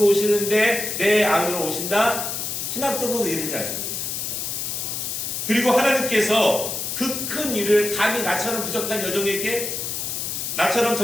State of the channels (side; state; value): left; noise; hiss, 3 dB below the sound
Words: 오시는데 내 안으로 오신다? 신학적으로도 이해되지 않습니다. 그리고 하나님께서 그 큰 일을 감히 나처럼 부족한 여종에게, 나처럼